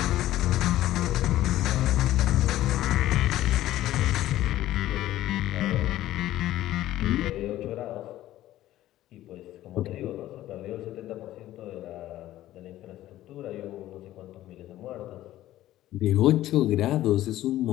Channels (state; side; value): quieter; right; 14.3 dB